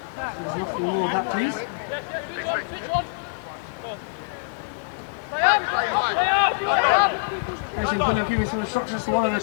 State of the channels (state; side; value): quieter; right; 36.2 dB